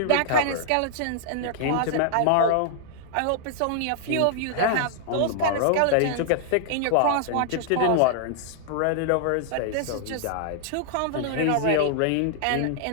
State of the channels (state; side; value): different; both; correlation -0.01